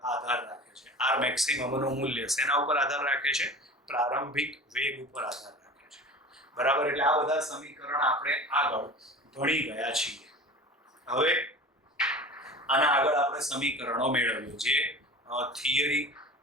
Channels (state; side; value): normal; both; correlation 0.36